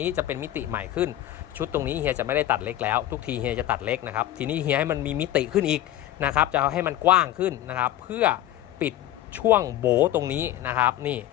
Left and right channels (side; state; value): right; quieter; 13.4 dB